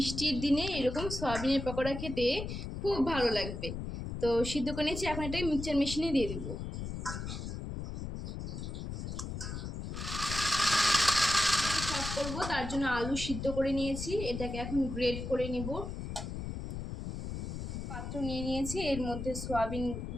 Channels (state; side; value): noise; left; rumble, 6 dB below the sound